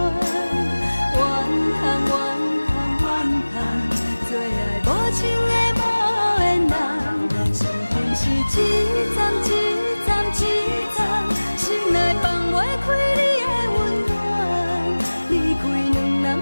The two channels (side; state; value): both; inverted; correlation -1.00